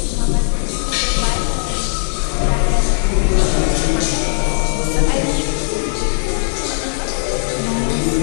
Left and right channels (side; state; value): right; silent; digital silence